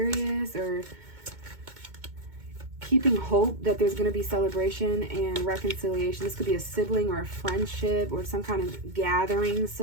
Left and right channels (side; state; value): left; late; 2.2 ms